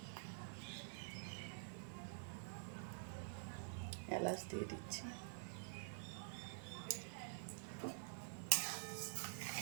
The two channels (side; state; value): left; silent; digital silence